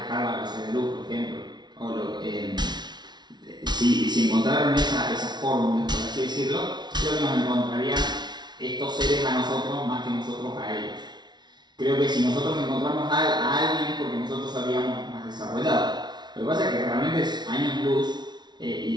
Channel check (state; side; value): late; left; 0.20 ms